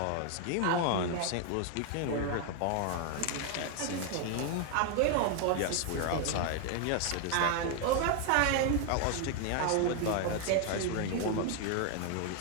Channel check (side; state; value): both; different; correlation 0.01